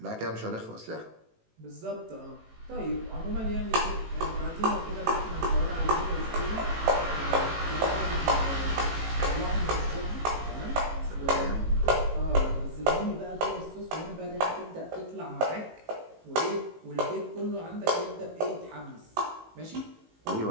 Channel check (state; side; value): late; left; 18 ms